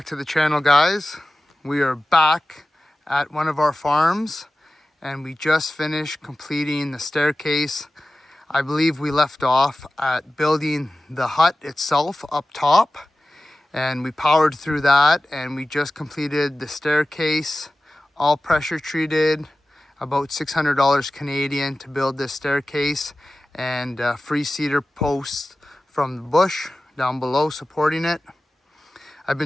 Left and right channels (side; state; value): both; normal; correlation 0.96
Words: to the channel, guys. We are back at one of our farms and we just finished completing the staircase. I believe we left off at building the hut itself up top, and we powered through that, and we just completed the staircase, all pressure treated, about $600 Canadian to build this staircase, and free cedar posts from the bush down below supporting it. I've